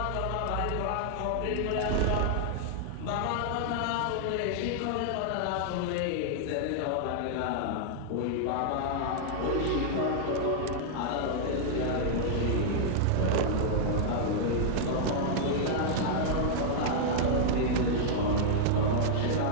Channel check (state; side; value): different; both; correlation -0.01